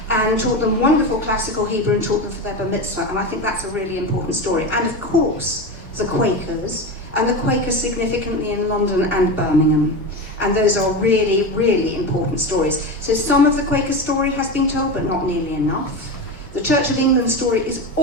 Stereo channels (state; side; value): noise; left; rumble, 28 dB below the sound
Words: and taught them wonderful classical Hebrew and taught them for their bar mitzvah, and I think that's a really important story. And of course, the Quakers, and the Quakers significantly in London and Birmingham. And those are really, really important stories. So some of the Quaker story has been told, but not nearly enough. The Church of England story is